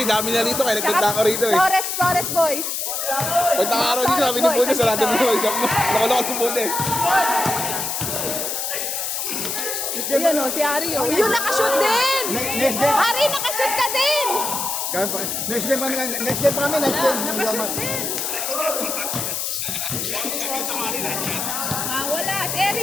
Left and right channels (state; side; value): noise; left; hiss, 2 dB below the sound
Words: dami na rito, kaya nagpunta ako rito eh. Flores Boys. Punta ka rin dito, sabi ni Puno, sarado mo yung shop mo. Nakulokot si Puno eh. Ayan o, si Ari o. Yun, nakashoot din! Next game. Ari, nakashoot ka din! Next game kami, next game kami, next game. Nakashoot din! Ah, wala. Si